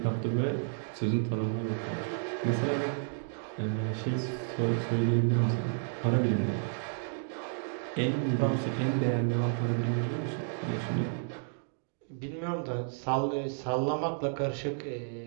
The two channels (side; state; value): left; silent; digital silence